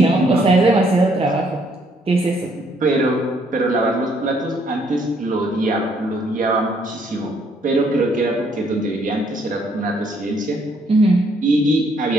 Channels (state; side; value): normal; both; correlation 0.68